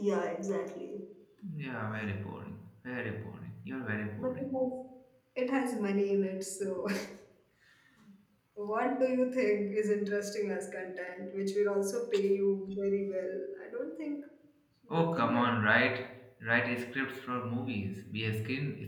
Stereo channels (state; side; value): identical; both; correlation 1.00